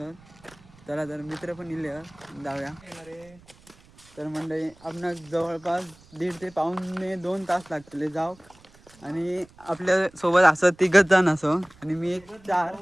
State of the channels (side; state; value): right; noise; rumble, 26 dB below the sound